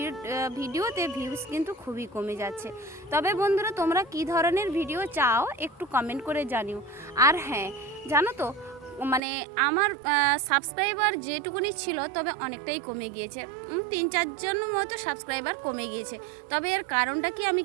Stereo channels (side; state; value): left; drops out; at 9.2 s